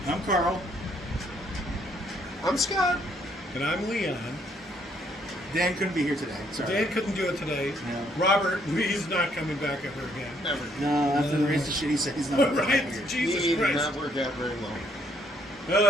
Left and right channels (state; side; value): normal; both; correlation 0.68